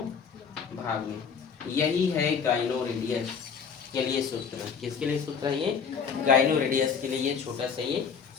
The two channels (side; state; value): right; quieter; 6.4 dB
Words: भाग में। यही है गाइनो रेडियस के लिए सूत्र। किसके लिए सूत्र है ये, गाइनो रेडियस के लिए ये छोटा सा ये